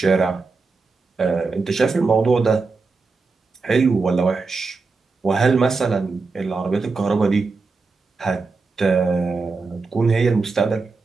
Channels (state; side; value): quieter; left; 4.2 dB